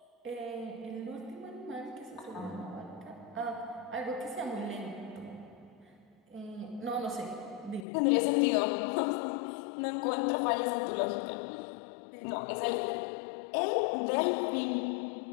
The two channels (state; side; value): drops out; right; at 7.9 s